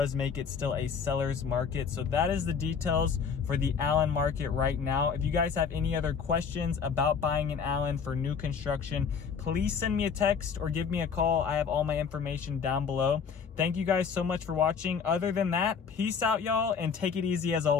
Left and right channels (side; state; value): right; quieter; 6.3 dB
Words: make it still a seller's market. So that is the details for the Allen market right now. If you guys have any other questions about buying an Allen for new construction, please send me a text or give me a call. I have all my information down below. Thank you guys so much for watching. Other than that, peace out, y'all, and take it easy as